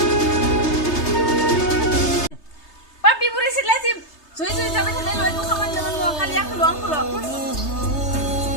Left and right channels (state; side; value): late; right; 3.3 ms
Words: Papi buri lazim. Suwe sampai sana lo itu kaman dengan mau kalian keluang.